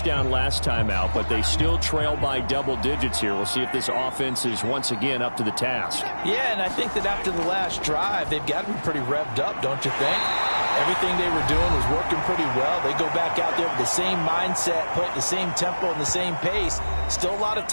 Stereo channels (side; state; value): both; inverted; correlation -1.00